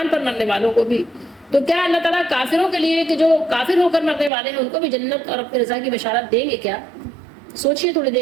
پر مرنے والوں کو بھی۔ تو کیا اللہ تعالیٰ کافروں کے لیے کہ جو کافر ہو کر مرنے والے ہیں ان کو بھی جنت اور اپنی رضا کی بشارت دیں گے کیا؟ سوچئے تھوڑی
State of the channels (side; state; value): left; drops out; at 4.3 s